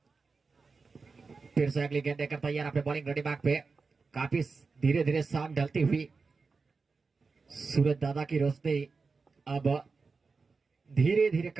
फिर से अगली गेंद देकर तैयार अपने बॉलिंग रेडी बैक पे, काफी धीरे धीरे शाम ढलती हुई सूरज दादा की रोशनी अब धीरे धीरे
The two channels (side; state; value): left; quieter; 4.5 dB